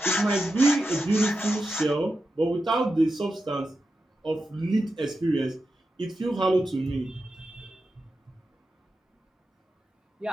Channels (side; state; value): both; normal; correlation 0.89